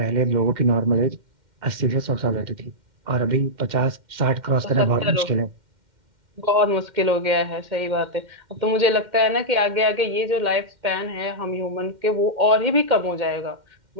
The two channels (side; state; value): left; late; 2.1 ms